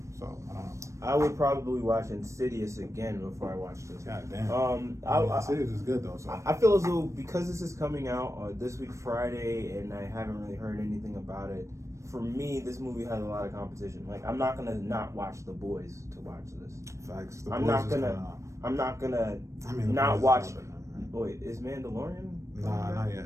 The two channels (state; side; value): late; left; 0.15 ms